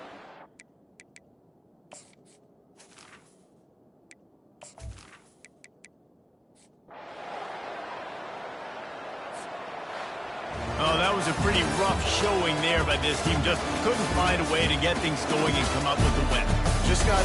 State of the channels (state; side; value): identical; both; correlation 1.00